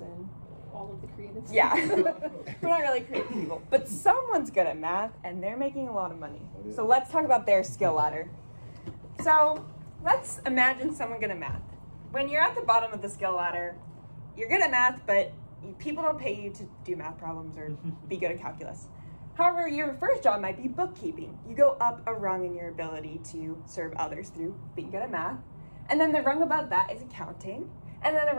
All of the creatives. Yeah, we're not really creative people. But someone's good at math and they're making a lot of money. So let's talk about their skill ladder. So let's imagine someone good at math. When you're at the bottom of the skill ladder, you're good at math, but people don't pay you to do math problems or be good at calculus. However, your first job might be bookkeeping. You go up a rung in your ability to serve others through being good at math. And then the rung above that is accounting. And then the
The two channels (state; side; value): inverted; both; correlation -1.00